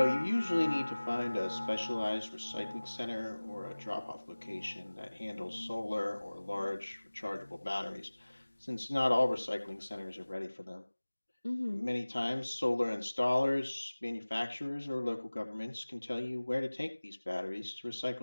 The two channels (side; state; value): both; inverted; correlation -1.00